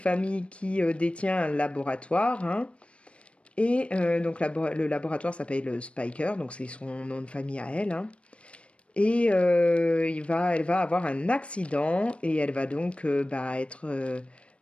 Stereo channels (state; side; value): late; right; 0.060 ms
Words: qui détient un laboratoire, hein. Et donc le laboratoire s'appelle Spiker, donc c'est son nom de famille à elle, hein. Et elle va avoir un accident et elle va donc bah, être